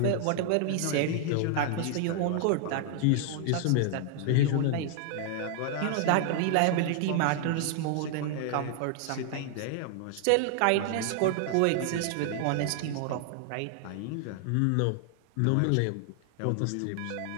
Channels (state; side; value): different; both; correlation 0.00